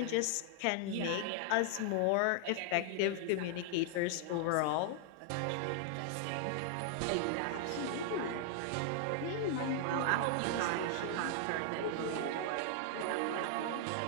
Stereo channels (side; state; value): both; different; correlation -0.01